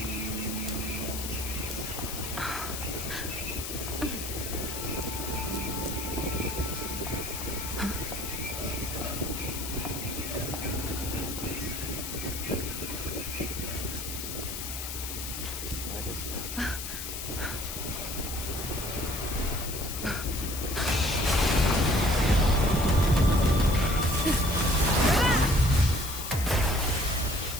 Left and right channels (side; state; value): left; noise; hiss, 6 dB below the sound